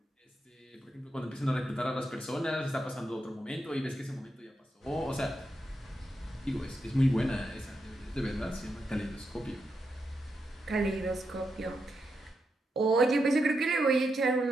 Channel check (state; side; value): normal; both; correlation 0.85